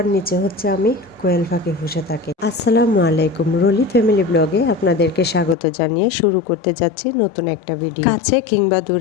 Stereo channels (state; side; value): drops out; right; at 5.6 s